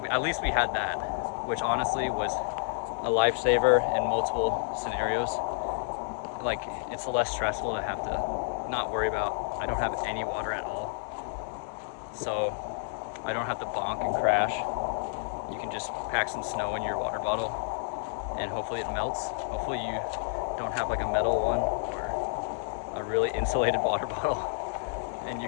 at least we had that, which honestly was a lifesaver in multiple scenarios. Like, it's less stressful to have to not worry about, I don't have any water at all, so I don't have to bonk and crash. You can just pack some snow in your water bottle, and hopefully it melts. Hopefully you don't have like a metal one or a really insulated water bottle, and you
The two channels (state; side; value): silent; right; 58 dB below the other